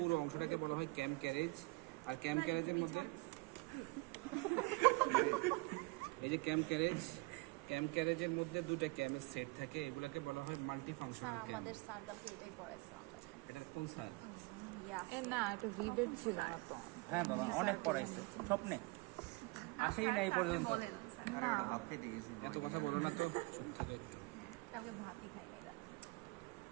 অংশটাকে বলা হয় ক্যাম ক্যারেজ। আর ক্যাম ক্যারেজের মধ্যে এই যে ক্যাম ক্যারেজের মধ্যে দুটো ক্যামের সেট থাকে, এগুলোকে বলা হয় মাল্টি ফাংশনাল ক্যাম। আমাদের সার্কেলকে এটাই পড়াইছে আমরা। এটা কোন স্যার? না, এটা ভিডিও ছিল না তো। হ্যাঁ বাবা, অনেক পড়াইছে স্বপ্নে আসেই না এই পর্যন্ত। না, এত কথা বলো না তো, চুপ থাকে একটু। কালকে ভাতই খাই না।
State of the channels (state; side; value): quieter; left; 25.8 dB